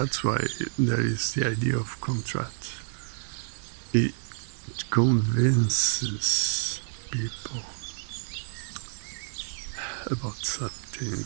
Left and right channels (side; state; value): left; silent; 59 dB below the other